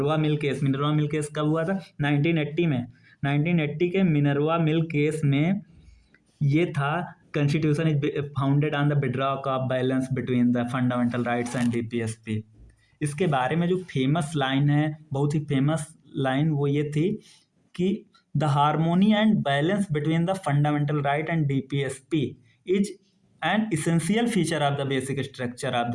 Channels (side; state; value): both; identical; correlation 1.00